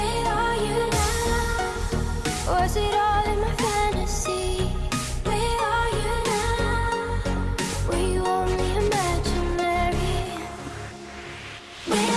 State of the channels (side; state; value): both; identical; correlation 1.00